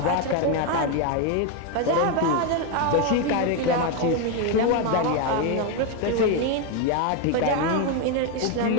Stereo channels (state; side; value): different; both; correlation 0.02